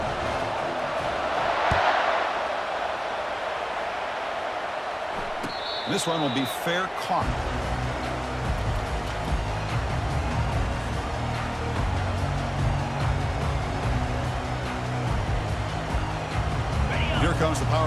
This one will be fair caught. Here comes the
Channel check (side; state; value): both; identical; correlation 1.00